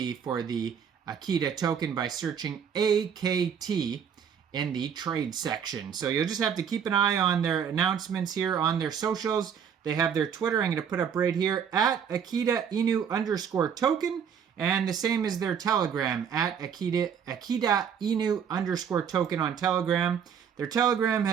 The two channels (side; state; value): left; quieter; 7.6 dB